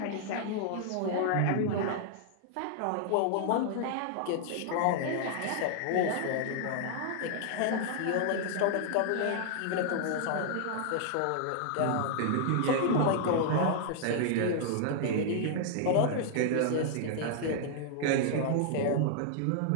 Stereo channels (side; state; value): both; different; correlation -0.01